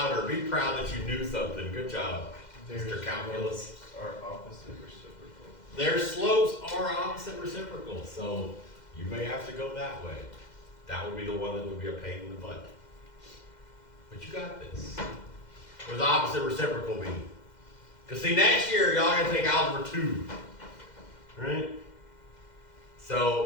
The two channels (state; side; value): late; right; 2.1 ms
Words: Be proud that you knew something. Good job, Mr. Calculus. Are opposite reciprocal. Their slopes are opposite reciprocal, so you may have to go that way. That would be the one that would be a pain in the butt. But you got this. What does opposite reciprocal mean? Because see, next year, y'all are going to take Algebra 2. Right?